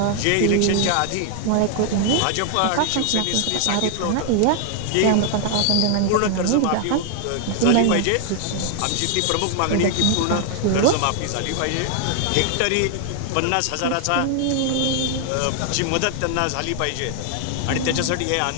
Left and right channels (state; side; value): different; both; correlation 0.00